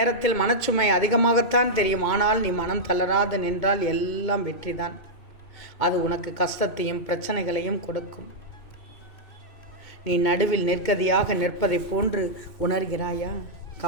மனச்சுமை அதிகமாகத்தான் தெரியும். ஆனால் நீ மனம் தளராது நின்றால் எல்லாம் வெற்றிதான். அது உனக்கு கஷ்டத்தையும் பிரச்சனைகளையும் கொடுக்கும். நீ நடுவில் நிற்கதியாக நிற்பதை போன்று உணர்கிறாயா?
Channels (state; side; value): late; right; 2.2 ms